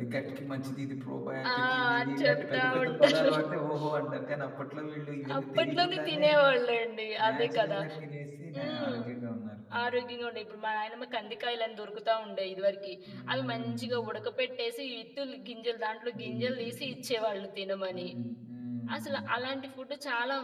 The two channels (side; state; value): both; identical; correlation 1.00